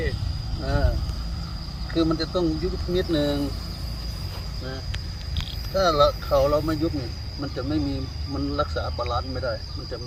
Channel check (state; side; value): identical; both; correlation 1.00